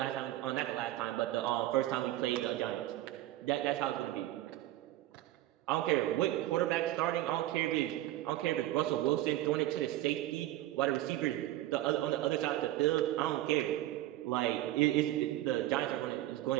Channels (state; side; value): quieter; left; 15.1 dB